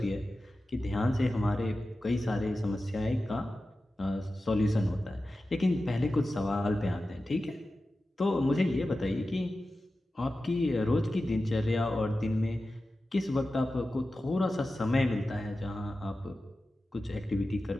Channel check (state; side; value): normal; both; correlation 0.94